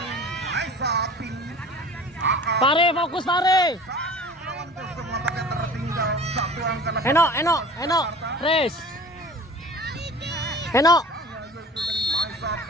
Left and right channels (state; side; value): normal; both; correlation 0.42